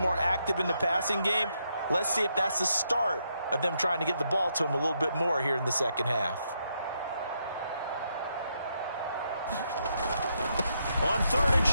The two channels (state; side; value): inverted; both; correlation -0.79